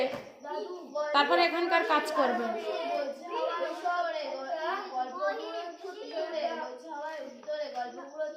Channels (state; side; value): identical; both; correlation 1.00